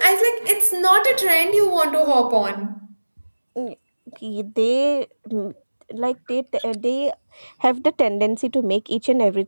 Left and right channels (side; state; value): both; inverted; correlation -1.00